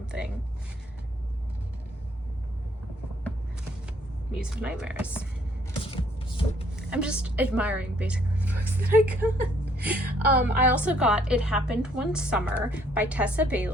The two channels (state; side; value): normal; both; correlation 0.65